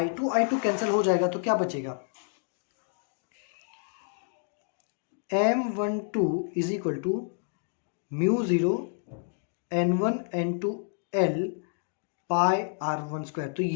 कैंसिल हो जाएगा तो क्या बचेगा, m12 is equal to mu 0 n1 n2 l pi r1 square. तो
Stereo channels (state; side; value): silent; right; digital silence